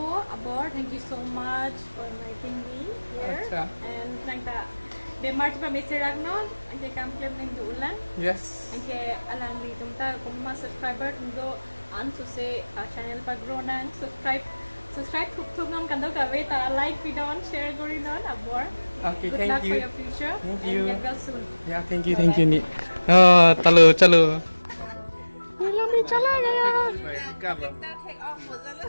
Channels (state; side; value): inverted; both; correlation -1.00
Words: Abor. Thank you so much for inviting me here. Acha. And thank you. De March pa Mr. Ragnon, ang kay kamplem ng duulan. yes Ang kay alang di tumta kung mga subscriber ndo an so say channel pa grow na subscribe thuk nam kandaw ka wait like video and share gori non Abor. okay Good thank luck you for your future. Thank and you. get well soon. yeah thank you ni chalo lami chala gaya